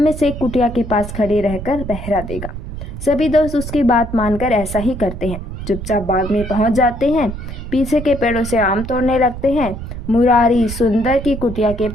से एक कुटिया के पास खड़े रहकर पहरा देगा। सभी दोस्त उसकी बात मानकर ऐसा ही करते हैं। चुपचाप बाग में पहुंच जाते हैं, पीछे के पेड़ों से आम तोड़ने लगते हैं। मुरारी सुंदर की कुटिया के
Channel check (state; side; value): noise; right; rumble, 8 dB below the sound